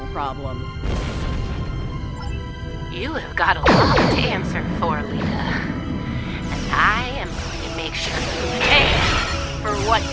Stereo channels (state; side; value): identical; both; correlation 1.00